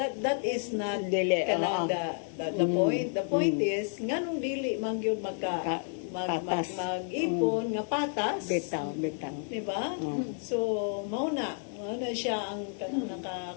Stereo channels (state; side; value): silent; right; 57 dB below the other